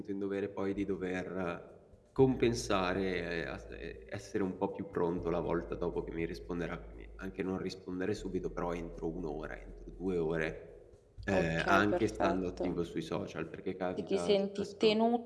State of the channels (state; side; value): identical; both; correlation 1.00